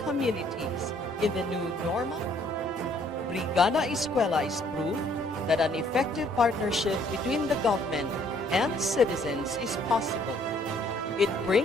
communities in the new normal? Brigada Eskwela is proof that an effective partnership between the government and citizens is possible. It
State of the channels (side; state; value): both; normal; correlation 0.63